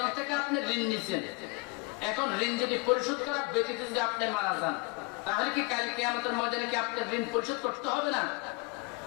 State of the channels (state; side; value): quieter; right; 27.7 dB